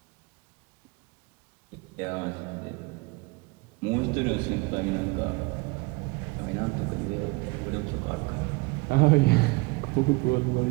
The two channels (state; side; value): quieter; left; 26.1 dB